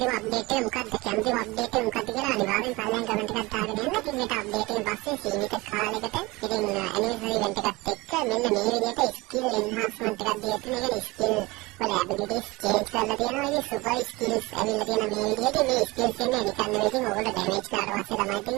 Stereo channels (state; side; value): quieter; left; 22.5 dB